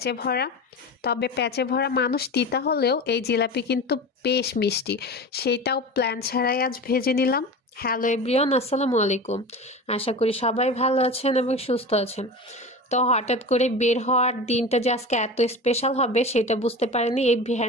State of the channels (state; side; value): normal; both; correlation 0.30